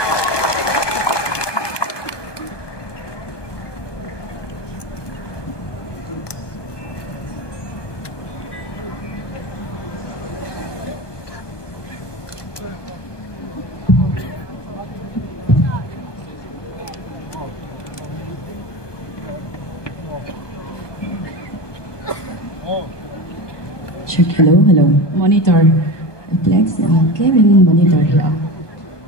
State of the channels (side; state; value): right; late; 1.2 ms